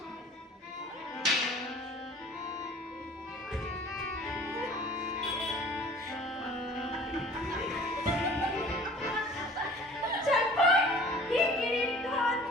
চটপট হিকিরির ধন।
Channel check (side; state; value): both; normal; correlation 0.48